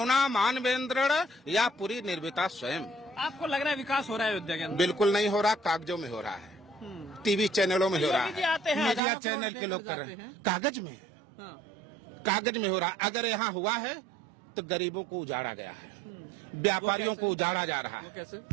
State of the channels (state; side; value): drops out; left; at 9.0 s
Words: मानवेंद्र या पूरी निर्मिता स्वयं। आपको लग रहा है विकास हो रहा है अयोध्या के अंदर? बिल्कुल नहीं हो रहा, कागजों में हो रहा है, टीवी चैनलों में हो रहा है, मीडिया चैनल के लोग कर रहे हैं। कागज में, कागज में हो रहा है। अगर यहाँ हुआ है तो गरीबों को उजाड़ा गया है, व्यापारियों को उजाड़ा जा रहा है। कैसे?